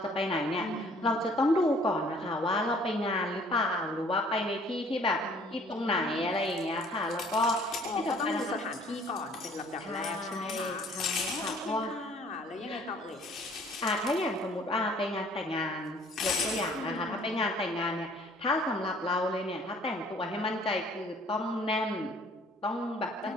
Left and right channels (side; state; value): both; normal; correlation 0.56